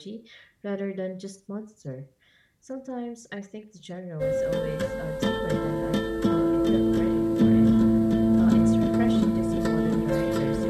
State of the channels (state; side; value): identical; both; correlation 1.00